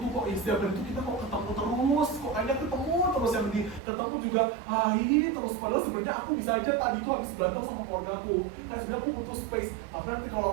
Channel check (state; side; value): drops out; left; at 3.8 s